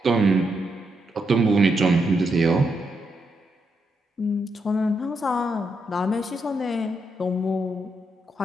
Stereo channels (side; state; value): both; normal; correlation 0.81